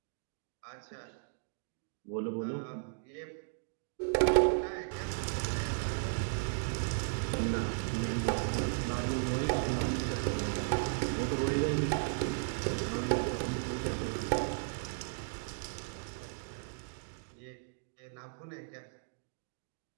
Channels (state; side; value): silent; left; digital silence